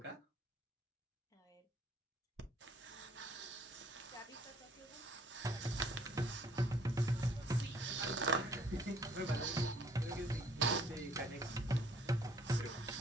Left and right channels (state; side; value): normal; both; correlation 0.60